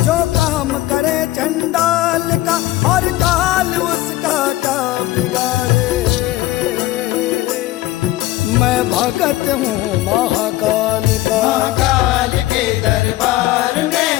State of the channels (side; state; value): right; quieter; 16.6 dB